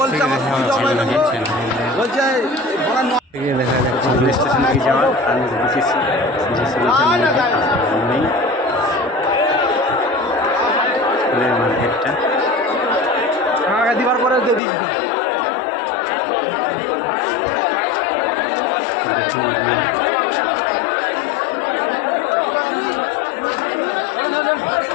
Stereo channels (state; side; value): drops out; right; at 14.6 s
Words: দেখা যাচ্ছে রেল স্টেশন থেকে যাওয়ার আর নেই ফুলের মার্কেটটা। দিবার পরে